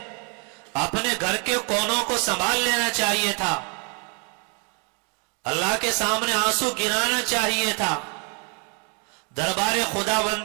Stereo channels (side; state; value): left; quieter; 35.9 dB